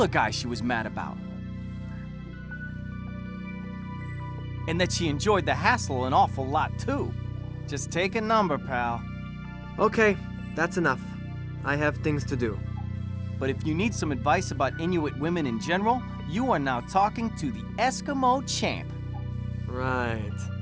guy she was mad about. And that she enjoyed the hassle an awful lot too. Just take a number, pal. Okay, that's enough. I have things to do. But if you need some advice about Inuit women in general, you are now talking to the Eskimo champ. Right.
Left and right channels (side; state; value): both; identical; correlation 1.00